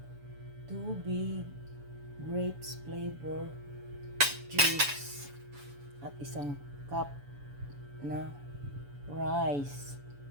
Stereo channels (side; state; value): left; late; 7.0 ms